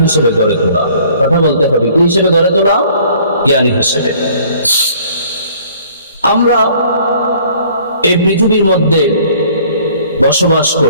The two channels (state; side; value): inverted; both; correlation -0.56